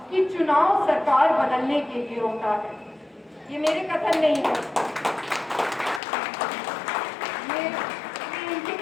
कि चुनाव सरकार बदलने के लिए होता है। ये मेरे कथन नहीं है, ये इनके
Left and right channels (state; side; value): drops out; right; at 6.0 s